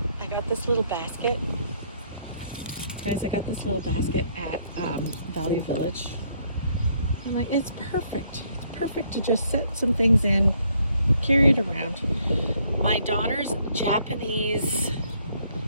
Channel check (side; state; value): both; inverted; correlation -0.68